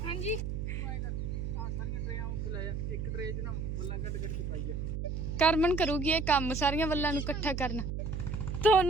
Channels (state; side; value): noise; right; hum, 3 dB below the sound